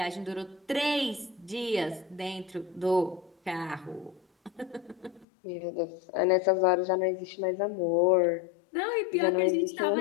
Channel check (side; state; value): right; drops out; at 5.2 s